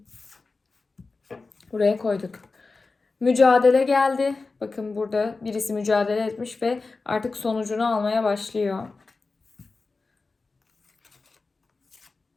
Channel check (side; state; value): right; quieter; 3.9 dB